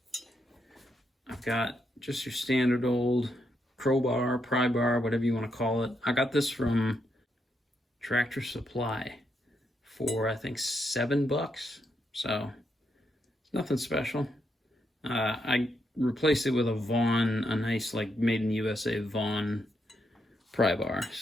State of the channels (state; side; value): normal; both; correlation 0.80